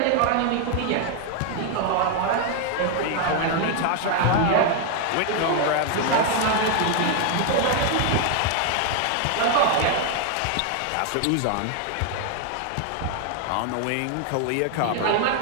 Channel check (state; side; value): different; both; correlation 0.01